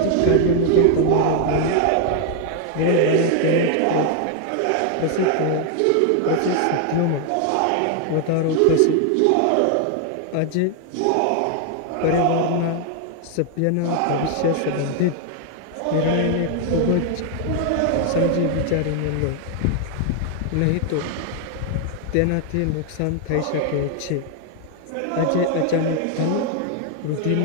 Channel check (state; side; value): different; both; correlation 0.00